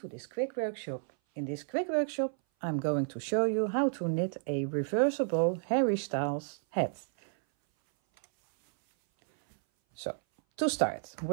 this quick workshop. In this quick workshop I'm going to show you how to knit a reversible Harry Styles hat. So to start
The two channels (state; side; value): silent; left; 57 dB below the other